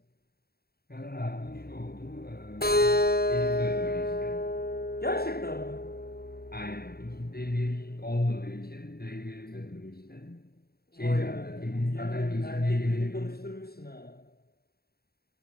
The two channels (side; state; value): right; late; 0.45 ms